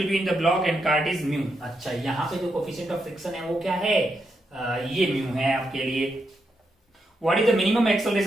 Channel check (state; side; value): normal; both; correlation 0.83